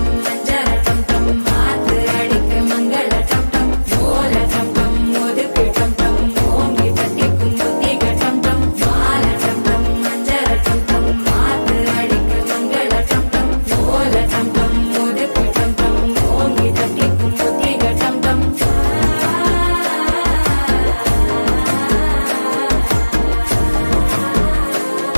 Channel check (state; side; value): inverted; both; correlation -1.00